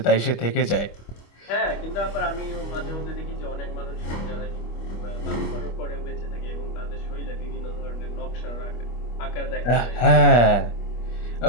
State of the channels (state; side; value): late; right; 25 ms